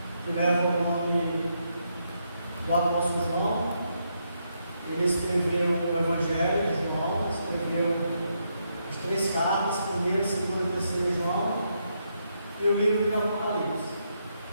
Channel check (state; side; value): inverted; both; correlation -0.79